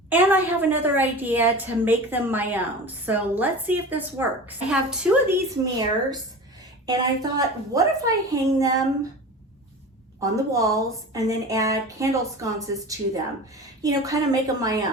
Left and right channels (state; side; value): normal; both; correlation 0.33